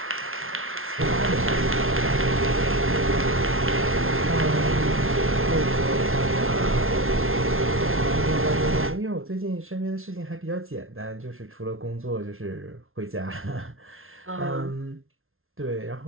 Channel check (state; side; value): late; left; 0.61 ms